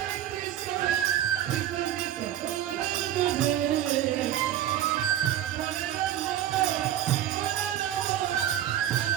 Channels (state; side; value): quieter; left; 11.7 dB